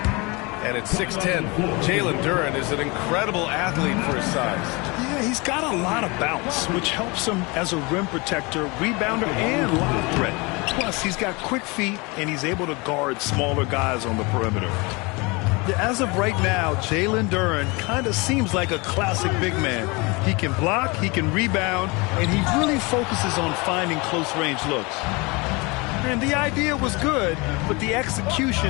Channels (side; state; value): right; quieter; 26.8 dB